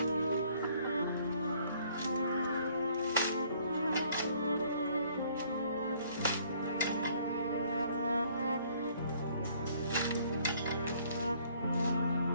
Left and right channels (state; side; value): inverted; both; correlation -0.61